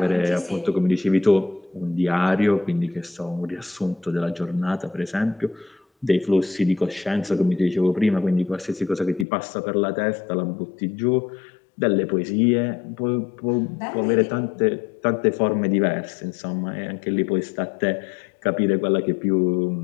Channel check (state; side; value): drops out; right; at 9.2 s